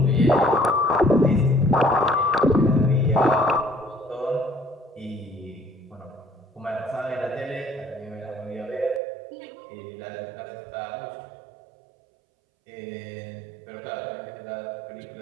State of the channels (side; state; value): left; drops out; at 9.0 s